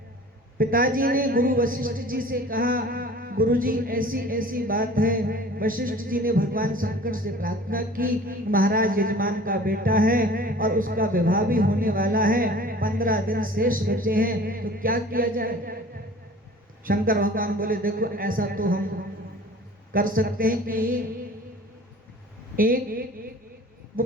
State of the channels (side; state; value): both; normal; correlation 0.45